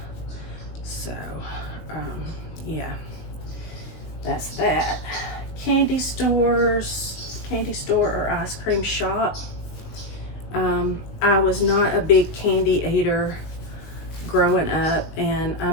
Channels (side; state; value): right; late; 19 ms